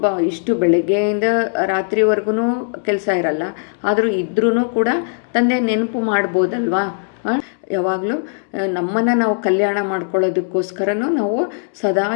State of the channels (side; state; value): right; silent; digital silence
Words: ಇಷ್ಟು ಬೆಳಗ್ಗೆಯಿಂದ ರಾತ್ರಿವರೆಗೂ ಕೆಲಸ ಇರಲ್ಲ. ಆದರೂ ಇದ್ರೂ ಕೂಡ ತಂದೆ ನೆನಪು ಮಾಡ್ಬೋದಲ್ವಾ? ಯಾವಾಗಲೂ ನಮ್ಮನ್ನು ನಾವು ಕಲ್ಯಾಣ ಮಾಡ್ಕೊಳ್ಳೋದಕ್ಕೋಸ್ಕರನೂ ನಾವು ಸದಾ